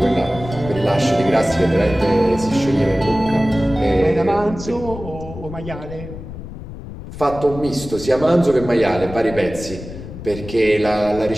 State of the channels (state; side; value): noise; left; rumble, 12 dB below the sound